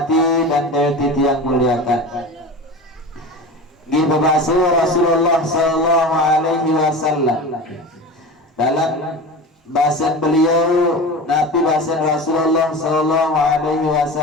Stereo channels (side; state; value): both; normal; correlation 0.31